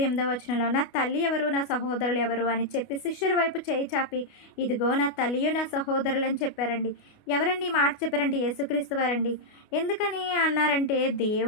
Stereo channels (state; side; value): late; right; 29 ms